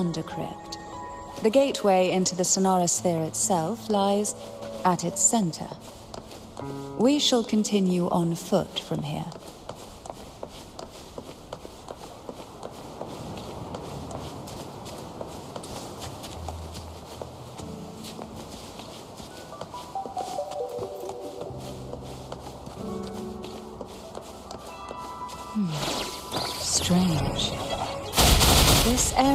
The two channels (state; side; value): identical; both; correlation 1.00